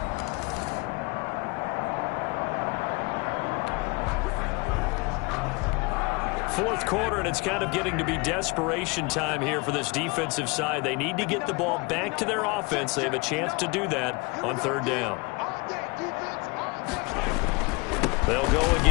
Fourth quarter, and it's kind of getting to be desperation time here for this defensive side. They need to get the ball back to their offense. They have a chance to do that on third down. They'll go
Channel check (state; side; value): quieter; right; 27.3 dB